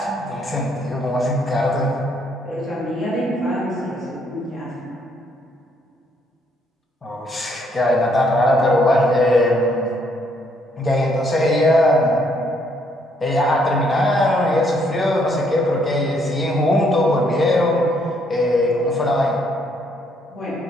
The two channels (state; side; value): normal; both; correlation 0.70